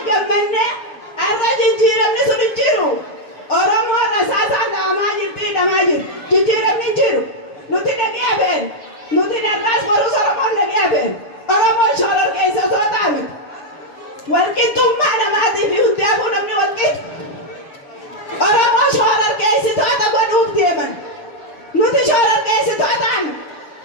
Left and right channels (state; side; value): late; right; 7.0 ms